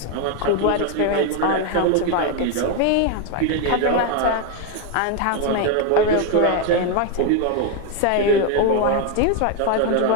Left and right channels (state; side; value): different; both; correlation 0.01